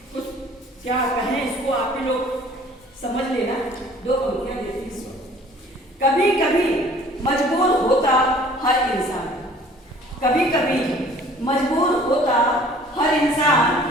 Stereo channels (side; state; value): both; normal; correlation 0.52